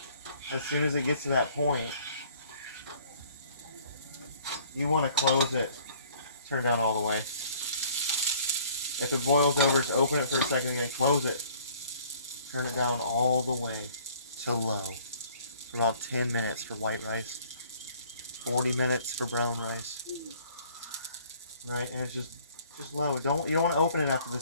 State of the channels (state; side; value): inverted; both; correlation -0.56